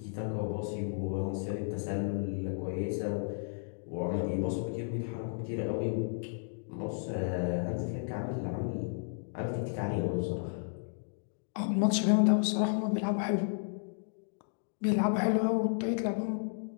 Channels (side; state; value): right; silent; digital silence